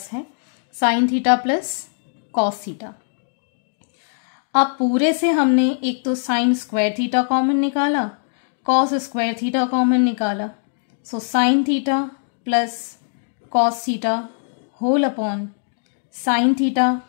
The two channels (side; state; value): right; silent; digital silence